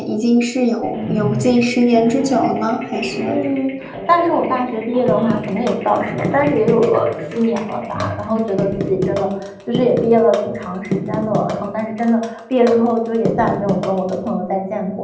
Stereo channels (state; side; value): identical; both; correlation 1.00